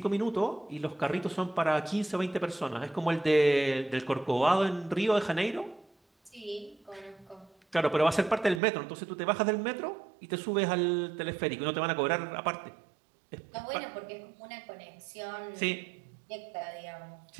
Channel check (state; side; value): drops out; left; at 8.6 s